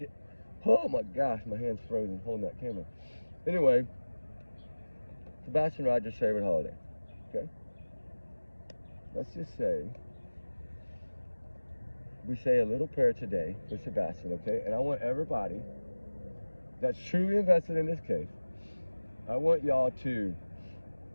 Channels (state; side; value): inverted; both; correlation -1.00